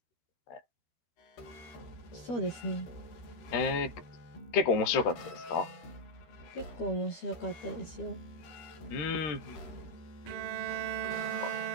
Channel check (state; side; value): late; right; 13 ms